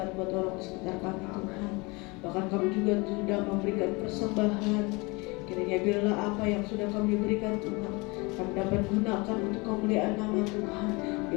buat orang di sekitar kami Tuhan. Bahkan kami juga sudah memberikan persembahan. Kiranya biarlah apa yang sudah kami berikan Tuhan, kami dapat gunakan untuk kemuliaan nama Tuhan.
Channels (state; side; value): quieter; right; 26.5 dB